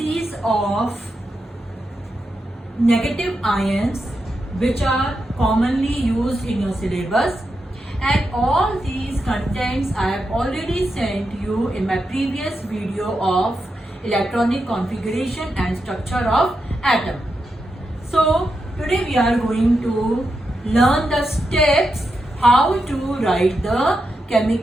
of negative ions which are commonly used in your syllabus. And all these contents I have already sent you in my previous video of electronic configuration and structure of atom. So today we are going to learn the steps how to write the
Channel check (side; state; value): both; normal; correlation 0.86